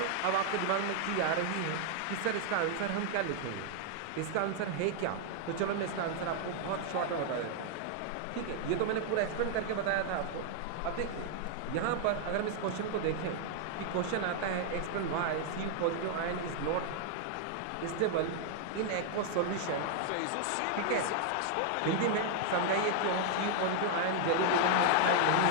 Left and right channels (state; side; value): different; both; correlation 0.00